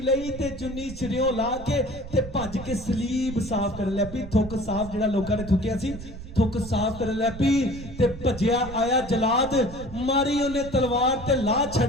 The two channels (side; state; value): right; noise; rumble, 13 dB below the sound